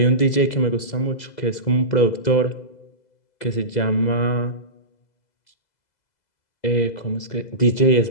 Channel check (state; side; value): late; right; 2.0 ms